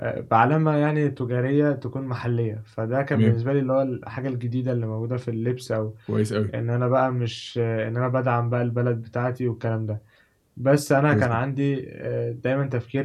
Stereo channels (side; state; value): both; identical; correlation 1.00